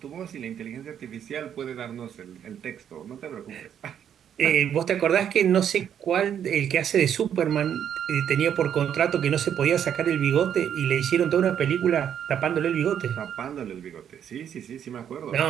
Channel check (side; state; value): left; quieter; 9.1 dB